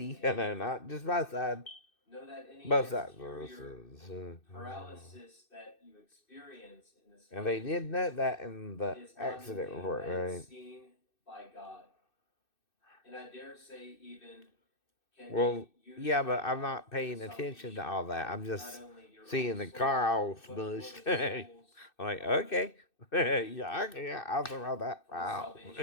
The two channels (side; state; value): right; late; 2.6 ms